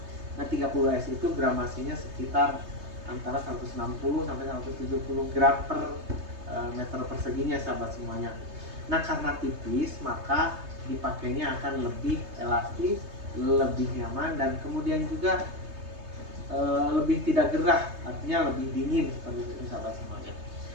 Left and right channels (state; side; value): late; left; 3.2 ms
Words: Nah, 30S itu gramasinya sekitar antara 160 sampai 170 gram per meter perseginya sahabat semuanya. Nah, karena tipis maka dipakainya akan lebih elastis, lebih nyaman, dan kemudian juga lebih tidak gerah, artinya lebih dingin seperti itu sahabat semuanya.